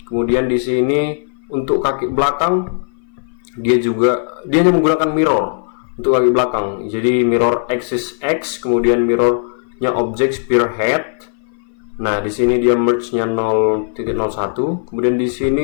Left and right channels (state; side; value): silent; right; 59 dB below the other